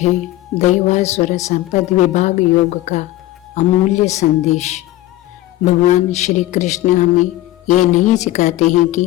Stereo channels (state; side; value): quieter; right; 16.0 dB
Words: दैवासुर संपद विभाग योग का अमूल्य संदेश। भगवान श्री कृष्ण हमें ये नहीं सिखाते हैं कि